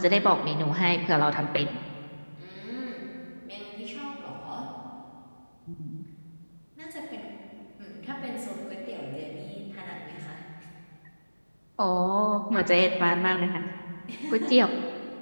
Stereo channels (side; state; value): both; inverted; correlation -1.00